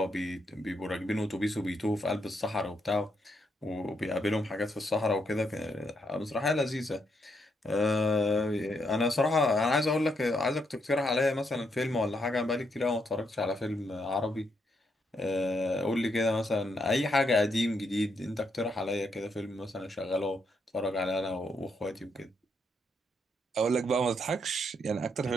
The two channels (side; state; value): both; normal; correlation 0.77